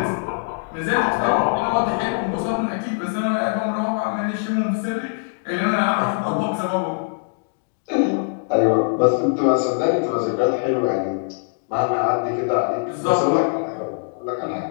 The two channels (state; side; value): silent; right; digital silence